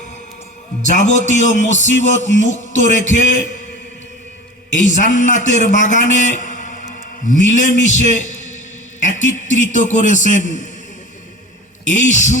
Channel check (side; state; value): both; normal; correlation 0.36